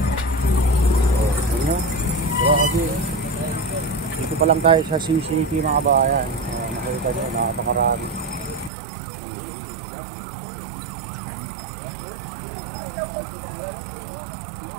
Dito pa lang tayo sa CCT mga kabayan. Nakita nyo, napakarami.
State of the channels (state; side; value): drops out; left; at 8.7 s